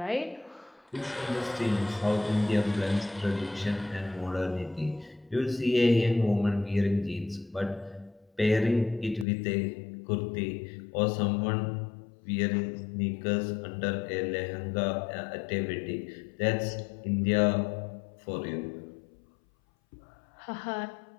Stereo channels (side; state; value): right; drops out; at 9.2 s